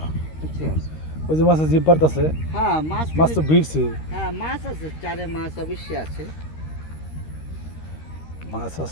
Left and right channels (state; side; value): late; right; 13 ms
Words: বুঝছেন? ওই যে মাছের জিপ পারতেছে। হ্যাঁ মাছ তো ভিড়ছে। হ্যাঁ মাছ আছে, চারে মাছ অবশ্যই আছে।